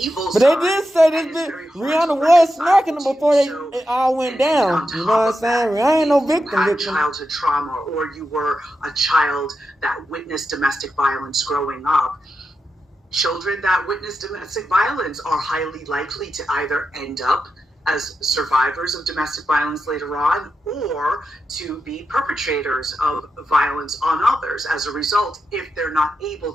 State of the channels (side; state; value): both; normal; correlation 0.88